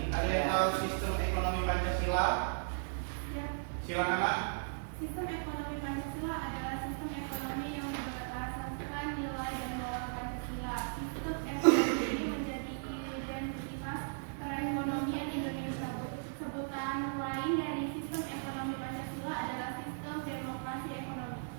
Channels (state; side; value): silent; left; digital silence